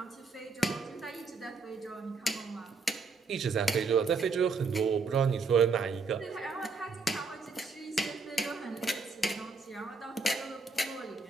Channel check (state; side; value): quieter; left; 4.4 dB